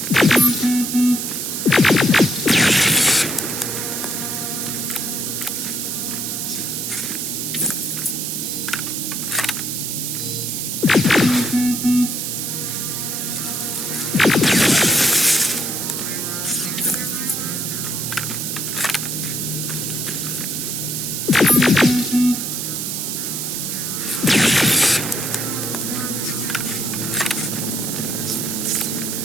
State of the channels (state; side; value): noise; right; hiss, 3 dB below the sound